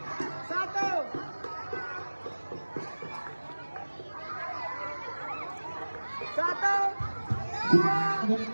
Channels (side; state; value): both; inverted; correlation -1.00